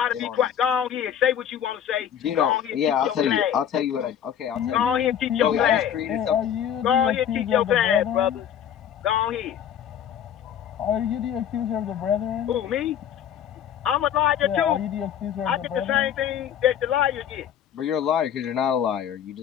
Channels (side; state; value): right; quieter; 9.4 dB